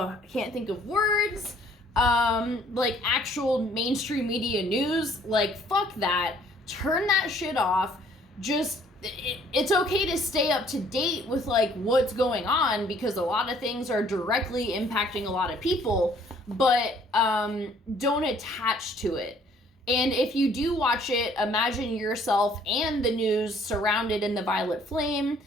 can't think of words, like actual mainstream media news, like, fuck that. Turn that shit off. Just, it's okay to stay up to date with, like, what's going on, because a lot of things are directly impacting a lot of people, but don't attach to it. And if you do watch it, imagine yourself and the news surrounded in the violet flame,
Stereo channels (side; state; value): both; normal; correlation 0.60